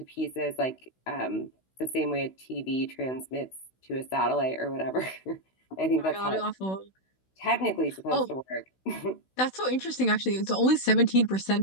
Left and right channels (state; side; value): late; right; 16 ms